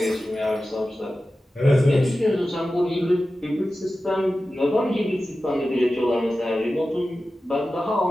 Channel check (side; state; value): both; normal; correlation 0.94